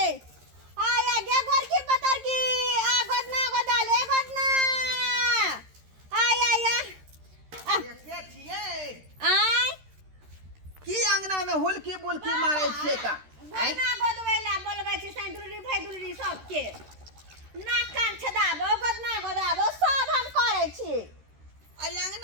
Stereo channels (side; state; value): left; late; 13 ms